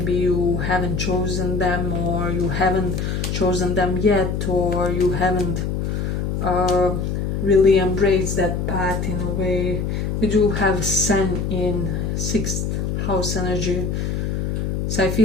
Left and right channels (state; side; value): noise; left; hum, 1 dB below the sound